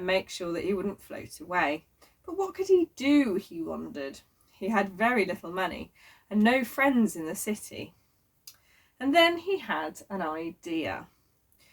make sure that he wouldn't float away. But what could he do, he wondered. He had very little money and no friends in the city. And then he had an idea.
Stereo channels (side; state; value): both; identical; correlation 1.00